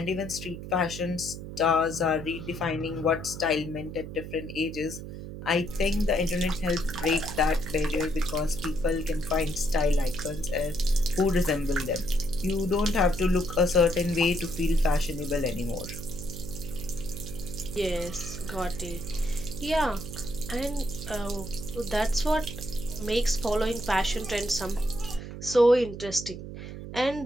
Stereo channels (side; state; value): right; noise; hum, 10 dB below the sound